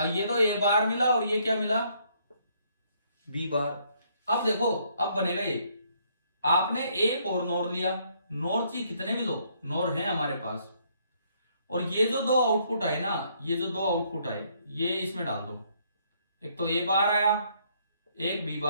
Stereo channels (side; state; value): both; inverted; correlation -0.68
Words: ये तो ए बार मिला और ये क्या मिला, बी बार। अब देखो, अब बनेगा ये, आपने एक और नोर लिया, नोर चाहिए कितने भी लो, नोर है हमारे पास, और ये जो दो आउटपुट आए ना, ये जो दो आउटपुट आए ये इसमें डाल दो। एक तो ए बार आया, एक बी